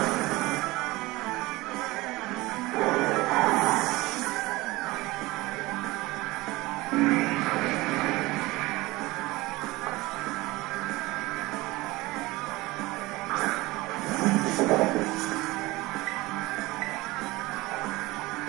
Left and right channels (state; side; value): quieter; left; 20.5 dB